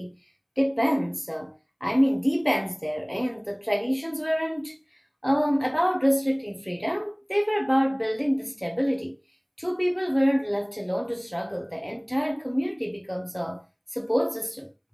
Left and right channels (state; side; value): identical; both; correlation 1.00